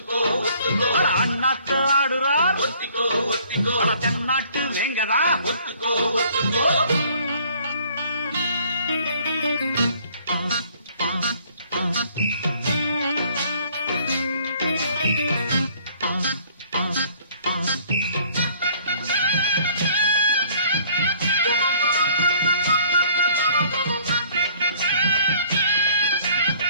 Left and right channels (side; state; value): both; inverted; correlation -0.57